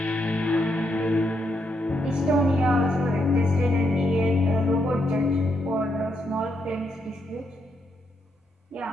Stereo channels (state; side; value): normal; both; correlation 0.80